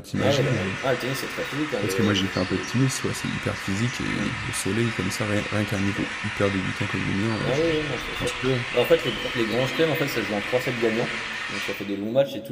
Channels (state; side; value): identical; both; correlation 1.00